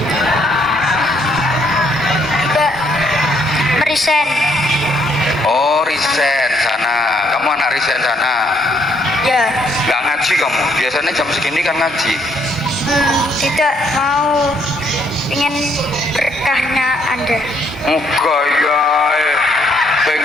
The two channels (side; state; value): both; normal; correlation 0.69